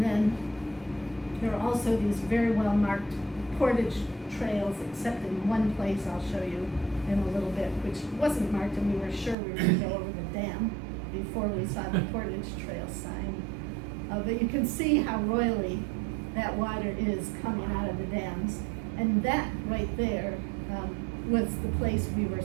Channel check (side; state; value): left; drops out; at 9.3 s